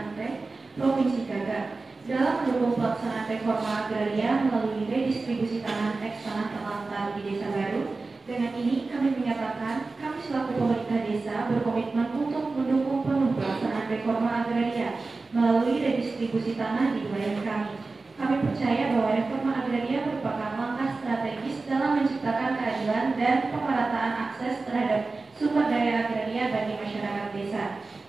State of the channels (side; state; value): left; quieter; 3.7 dB